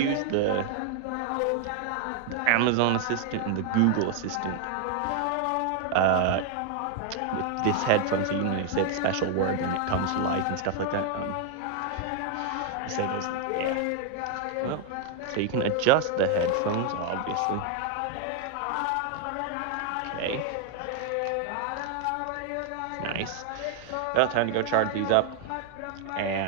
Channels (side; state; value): both; different; correlation 0.00